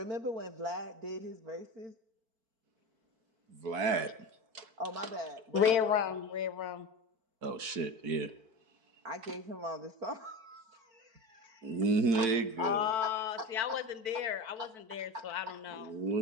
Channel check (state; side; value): late; left; 4.5 ms